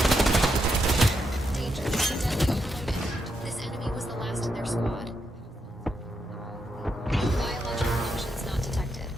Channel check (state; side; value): normal; both; correlation 0.82